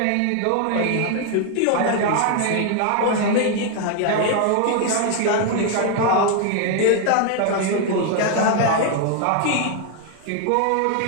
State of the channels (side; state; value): both; different; correlation 0.00